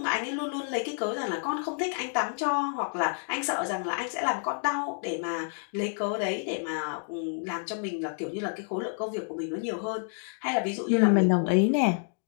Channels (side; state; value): right; silent; 57 dB below the other